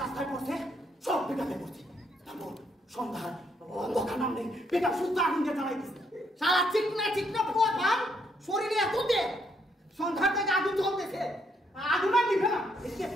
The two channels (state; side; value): normal; both; correlation 0.73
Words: রাস্তায় পড়ছে সব পিকআপে পড়ছে তারপর সন্ধ্যার অন্ধকার নামলে পিকআপ সুস্থ আগুন দিয়ে চালাই দিছে সারা চিকনা পোয়া পান শরীরে এত দে সন্ধ্যার থেকে আগুন জ্বলতেছে আগুন আর নিভে না এদিকে